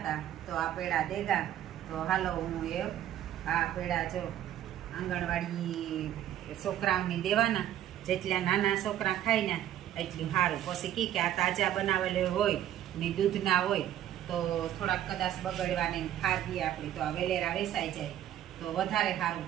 તો આ પેડા દેગા. તો હાલો હું આ પેડા જો આંગણવાડી છોકરાઓની દેવાના, જેટલા નાના છોકરા ખાય ને એટલું સારું. પછી કે આ તાજા બનાવેલું હોય ને દૂધના હોય તો થોડાક કદાચ બગડવાની ખાધી આપણી તો આ વેલેરા વેસાઈ જાય તો વધારે સારું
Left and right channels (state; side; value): quieter; left; 11.7 dB